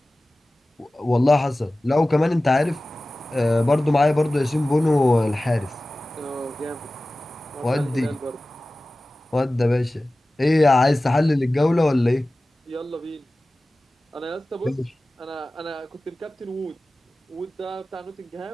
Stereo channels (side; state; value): both; normal; correlation 0.97